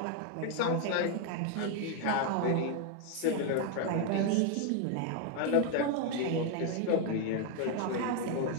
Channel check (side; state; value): both; different; correlation 0.01